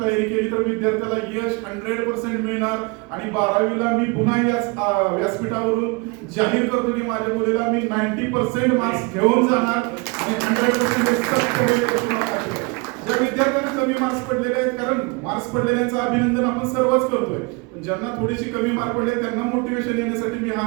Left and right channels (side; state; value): left; quieter; 28.6 dB